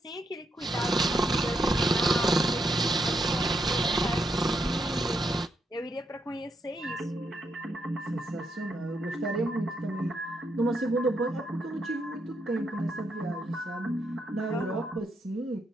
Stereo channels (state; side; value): normal; both; correlation 0.80